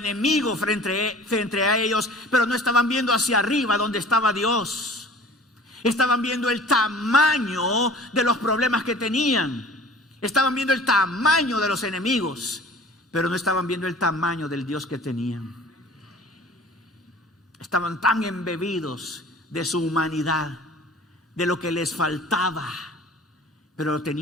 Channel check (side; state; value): both; normal; correlation 0.45